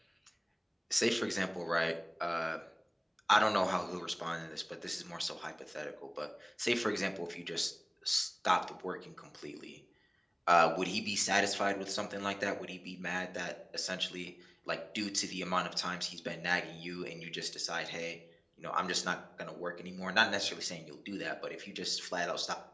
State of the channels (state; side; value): identical; both; correlation 1.00